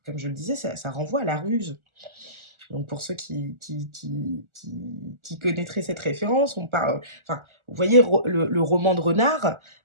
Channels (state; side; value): late; left; 1.4 ms